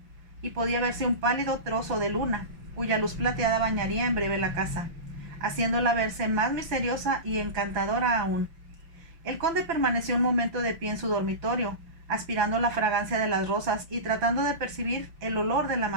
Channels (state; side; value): late; left; 6.0 ms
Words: y podía verse un pálido trozo de luna, cuya luz plateada bañaría en breve la casa, haciéndola verse más misteriosa y encantadora aún. El conde permaneció un momento de pie en su dormitorio, aspirando la fragancia de las rosas y tratando de percibir el olor de la